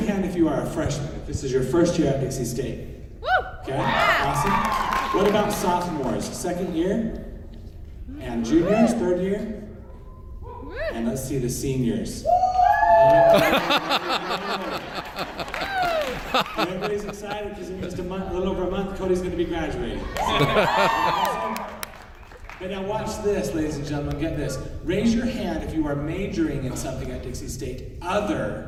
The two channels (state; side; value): identical; both; correlation 1.00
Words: hand if you are a freshman, if this is your first year at Dixie State. Okay, awesome. What about sophomores? Second year? And juniors, third year? And let's see the seniors. Everybody's excited because in just a little over a month, Cody's going to be graduating. But now watch this, ladies and gentlemen, get this. Raise your hand if you are majoring in something at Dixie State